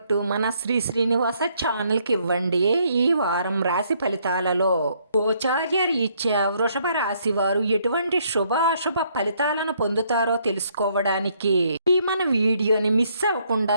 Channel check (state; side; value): inverted; both; correlation -0.69